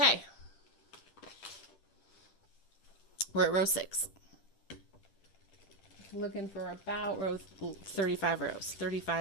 We're at row 6. Looking for about row 35 rows,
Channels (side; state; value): right; late; 10 ms